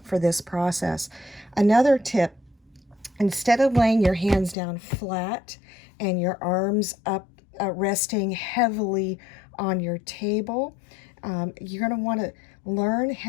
for this process. Another tip, instead of laying your hands down flat and your arms up resting heavily on your table, you're going to want to learn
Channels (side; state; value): right; drops out; at 4.5 s